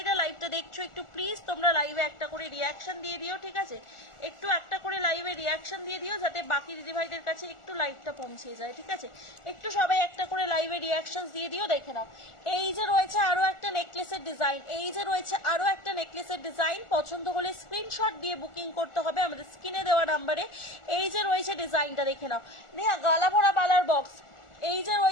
লাইভটা দেখছো, একটু প্লিজ তোমরা লাইভে একটা করে রিয়াকশন দিয়ে দিও। ঠিক আছে, একটু একটা করে লাইভে রিয়াকশন দিয়ে দিও, যাতে বাকি দিদি ভাইদের কাছে একটু লাইভটা পৌঁছে যায়। ঠিক আছে, একটু সবাই একটা করে লাইভে রিয়াকশন দিয়ে দিও। দেখে নাও, এই যে রয়েছে আরো একটা নেকলেসের ডিজাইন, এই যে রয়েছে আরো একটা নেকলেসের ডিজাইন। পছন্দ হলে স্ক্রিনশট দিয়ে বুকিং করতে হবে আমাদের স্ক্রিনে দেওয়া নাম্বারে। এই যে রয়েছে ডিজাইনটা, দেখে নাও, নেহা গালা ভরা বালার বক্স। এই যে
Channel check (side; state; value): right; late; 1.4 ms